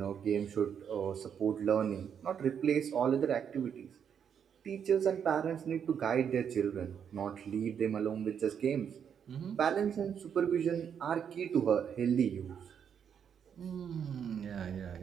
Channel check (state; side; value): quieter; left; 7.9 dB